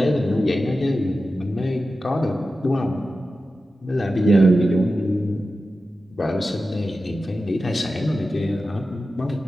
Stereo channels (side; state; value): both; normal; correlation 0.93